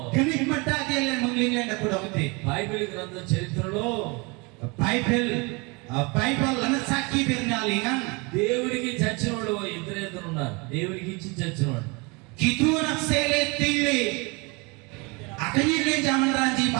Genik mata kelen mengling len ataku nabi. Bible గ్రంథం చరిత్రలో Bible lanat saki bernalingan. దేవుడికి చచ్చిన వాడు ఇద్దరు ఉన్నారు. దేవుడికి ఇచ్చి చచ్చిన వాడు. Kitu aksele tili. Akanyi len zaman ranji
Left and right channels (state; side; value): quieter; left; 28.4 dB